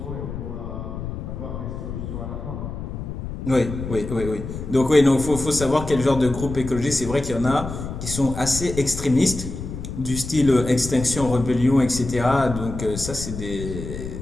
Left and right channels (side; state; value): left; noise; rumble, 8 dB below the sound